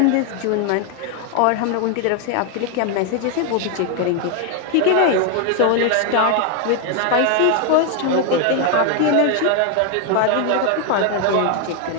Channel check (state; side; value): different; both; correlation 0.00